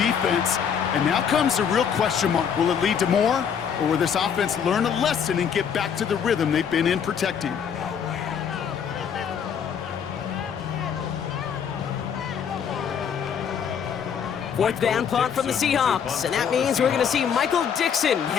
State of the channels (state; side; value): quieter; right; 7.6 dB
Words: And now comes the real question mark. Will it lead to more? Or will this offense learn a lesson and get back to the rhythm they've been in protecting? Fourth down punt from the Seahawks. And that means we're going to see Michael Dixon